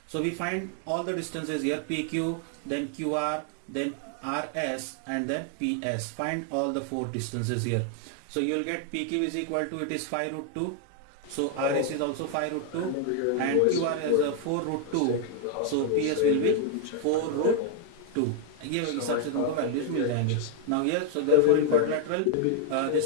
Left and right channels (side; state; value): both; different; correlation 0.00